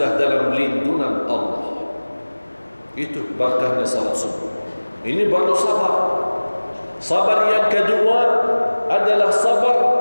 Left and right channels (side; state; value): both; inverted; correlation -1.00